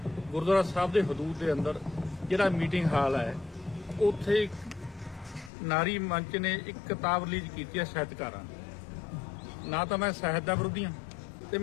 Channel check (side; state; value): right; drops out; at 5.5 s